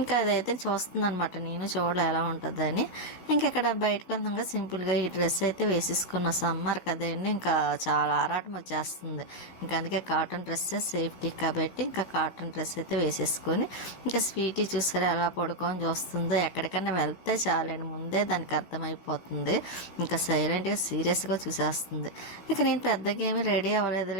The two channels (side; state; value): right; late; 15 ms